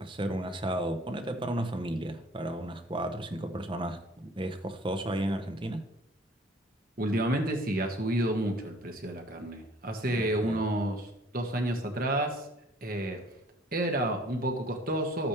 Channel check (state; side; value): normal; both; correlation 0.54